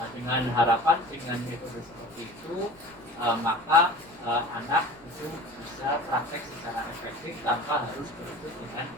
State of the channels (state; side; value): noise; right; rumble, 27 dB below the sound